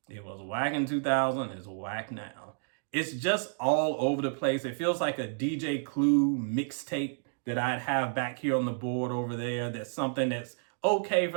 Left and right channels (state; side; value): silent; left; digital silence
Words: It was whack in 2000, it's whack now. It's just all over the place. It feels like a DJ Clue mixtape that I'd have back here on the board over there. That's something that's okay